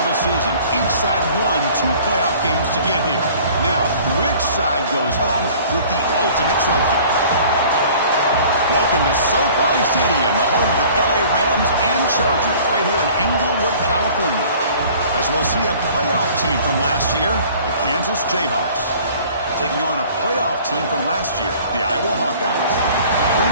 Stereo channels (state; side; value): inverted; both; correlation -0.49